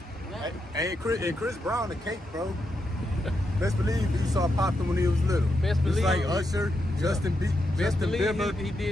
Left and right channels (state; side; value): normal; both; correlation 0.84